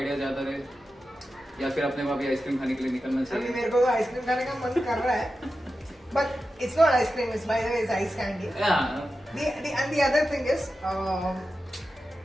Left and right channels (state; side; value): normal; both; correlation 0.92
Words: ज्यादा रहे या फिर अपने वहाँ भी आइसक्रीम खाने के लिए निकलना अभी चाहिए. मेरे को तो आइसक्रीम खाने का मन कर रहा है, but it's not ice cream, it's by the way it's ice candy. Yeah. And the other thing is